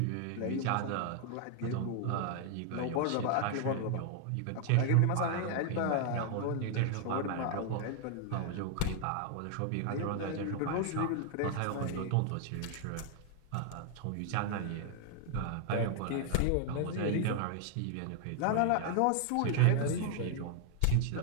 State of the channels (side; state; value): both; different; correlation 0.00